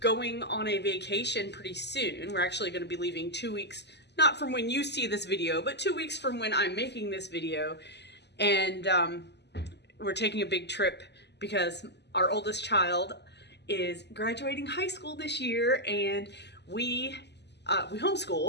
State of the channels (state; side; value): late; right; 0.50 ms